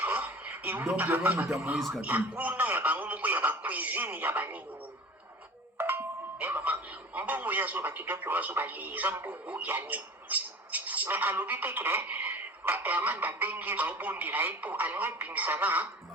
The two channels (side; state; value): both; normal; correlation 0.40